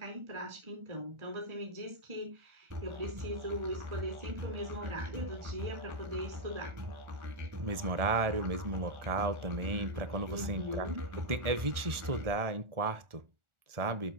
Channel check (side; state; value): left; late; 1.4 ms